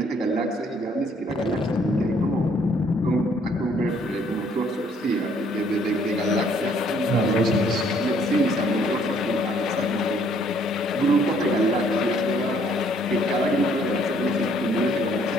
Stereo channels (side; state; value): both; normal; correlation 0.63